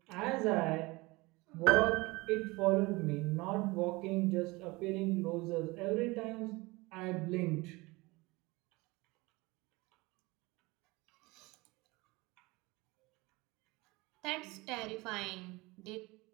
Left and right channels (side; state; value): left; quieter; 23.2 dB